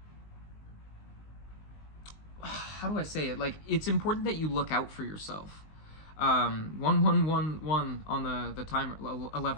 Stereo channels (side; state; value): right; late; 19 ms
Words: do I say it? Like, it's important that you look out for yourself. 1111 on the timer,